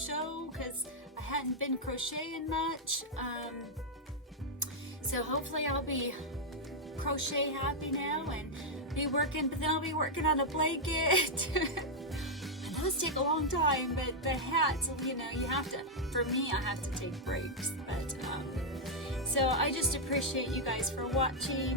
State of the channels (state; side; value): normal; both; correlation -0.03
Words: because I hadn't been crocheting much. So hopefully I'll be crochet happy now and be working, but then I'll be working on a blanket. Those take a long time, but the hats, you have to, for me, I have to take breaks. But so I just appreciate you guys for